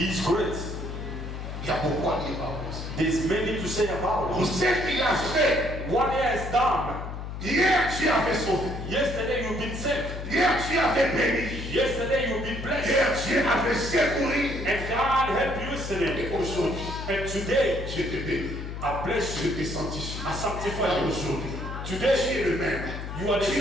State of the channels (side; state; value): left; noise; hum, 7 dB below the sound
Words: is great. Il y a beaucoup à dire par rapport à ça. There's many to say about Pour it. ce qu'il a fait, What he has done. hier tu as fait sauver. Yesterday you've been saved. Hier tu as fait béni. Yesterday you've been blessed. Hier tu as fait secourir. And God helped you yesterday. Et aujourd'hui, And today je te bénis. I bless Je you. te sanctifie. I sanctify Car you. aujourd'hui, Today tu es le même. you are the Tu